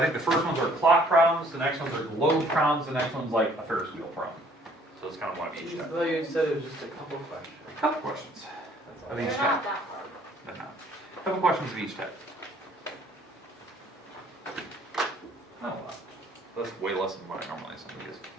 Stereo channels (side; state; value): both; normal; correlation 0.59